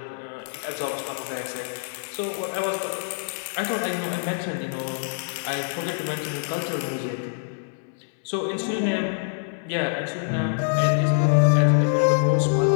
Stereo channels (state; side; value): silent; right; 62 dB below the other